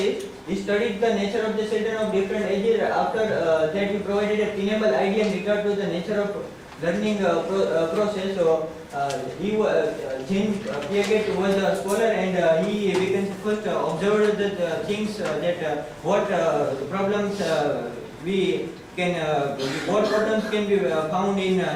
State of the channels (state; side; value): identical; both; correlation 1.00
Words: He studied the nature of the children of different ages. After that, he provided a tenable idea in regard to the nature of learning process. So James Leggett was a scholar, and he first observed the things that what problems what problems can be found in